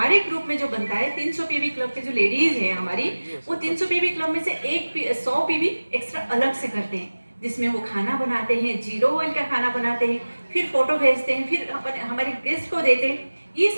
ग्रुप में जो बनता है, 300 पीवी क्लब के जो लेडीज है हमारी, वो 300 पीवी क्लब में से 100 पीवी एक्स्ट्रा अलग से करते हैं, जिसमें वो खाना बनाते हैं, 0 ऑयल का खाना बनाते हैं, फिर फोटो भेजते हैं, फिर हमारे गेस्ट को देते हैं। ये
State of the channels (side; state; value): both; inverted; correlation -1.00